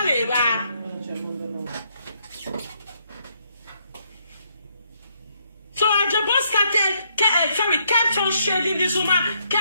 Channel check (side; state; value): both; inverted; correlation -0.73